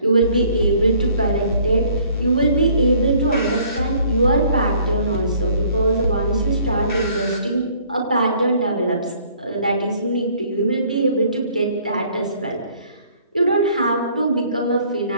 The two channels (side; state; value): both; inverted; correlation -0.59